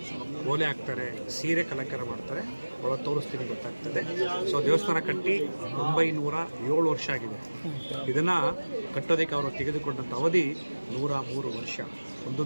ಓಲೆ ಹಾಕ್ತಾರೆ, ಸೀರೆ ಅಲಂಕಾರ ಮಾಡ್ತಾರೆ. ಒಳ ತೋರಿಸ್ತೀನಿ ಗೊತ್ತಾಗ್ತದೆ. ಸೊ ದೇವಸ್ಥಾನ ಕಟ್ಟಿ 907 ವರ್ಷ ಆಗಿದೆ. ಇದನ್ನು ಕಟ್ಟೋದಕ್ಕೆ ಅವರು ತೆಗೆದುಕೊಂಡಂಥ ಅವಧಿ 103 ವರ್ಷ.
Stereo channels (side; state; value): both; inverted; correlation -1.00